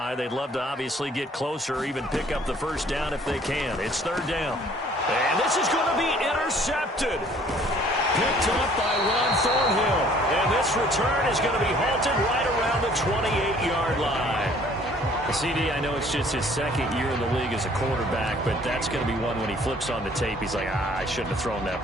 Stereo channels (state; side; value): normal; both; correlation 0.57